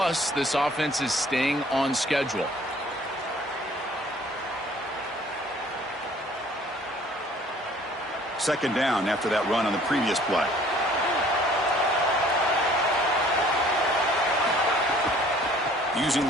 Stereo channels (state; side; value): normal; both; correlation 0.55